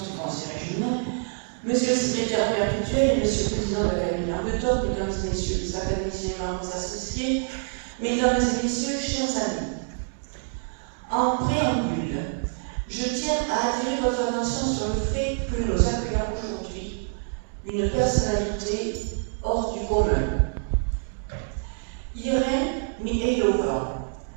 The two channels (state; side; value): silent; left; 61 dB below the other